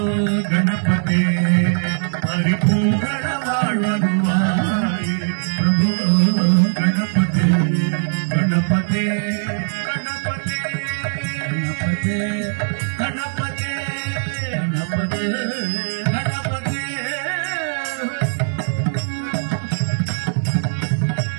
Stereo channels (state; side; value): silent; left; digital silence